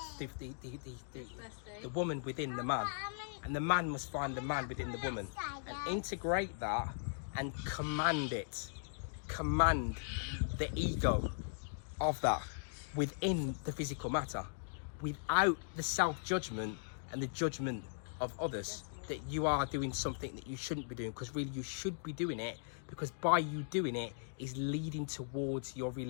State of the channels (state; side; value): silent; right; digital silence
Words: the woman within the man, and the man must find the man within the woman and integrate that and command the ego of that within the physical matter, without the self-judgment and the judgment of others that you are doing something that you shouldn't be doing, because really you should be doing it, because by you doing it is leading towards your